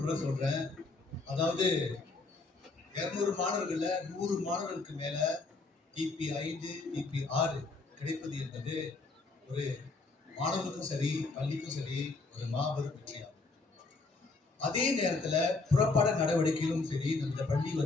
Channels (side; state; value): right; quieter; 3.7 dB